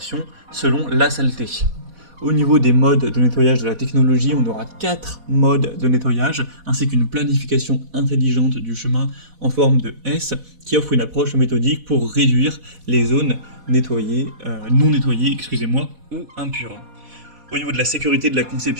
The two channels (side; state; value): left; late; 4.2 ms